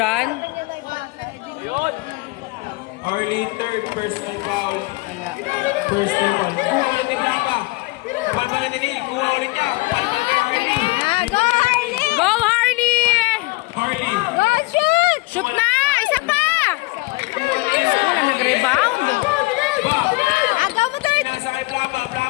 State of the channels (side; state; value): right; quieter; 24.2 dB